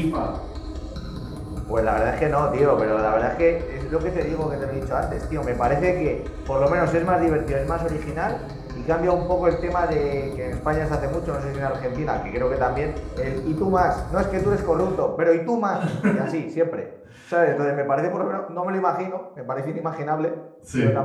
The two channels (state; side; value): identical; both; correlation 1.00